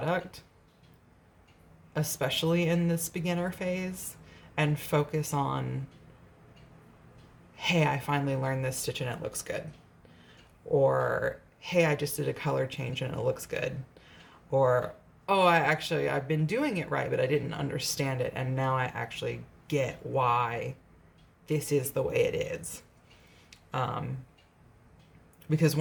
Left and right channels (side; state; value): both; identical; correlation 1.00